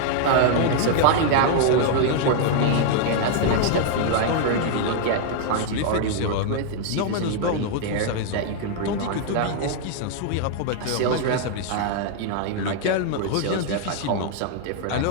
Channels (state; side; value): different; both; correlation 0.00